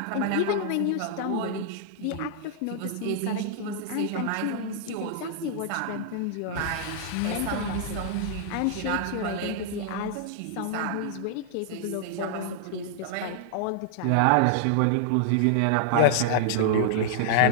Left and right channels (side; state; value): both; different; correlation -0.01